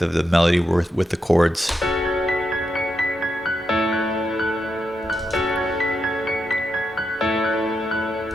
of the melody with the chords.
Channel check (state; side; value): normal; both; correlation 0.84